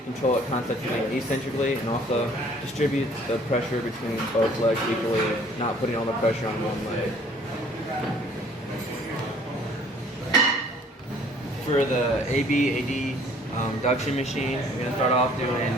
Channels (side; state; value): both; normal; correlation 0.57